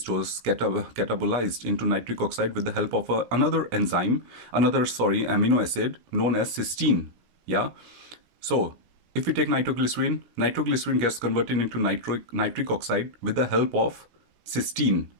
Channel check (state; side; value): late; left; 17 ms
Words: or catabolized into nitric oxide with the help of another amino acid known as cysteine. Yeah. So if we take nitroglycerin, nitroglycerin gets converted into nitric oxide with the help of cysteine,